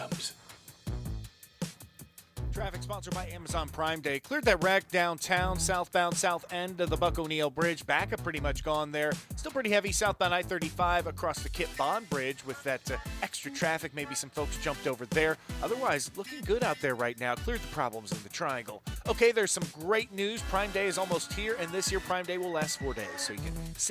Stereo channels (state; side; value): identical; both; correlation 1.00